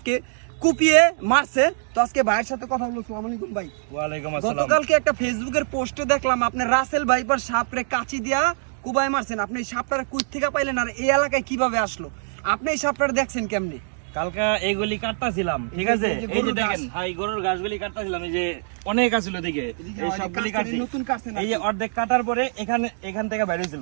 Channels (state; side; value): silent; left; digital silence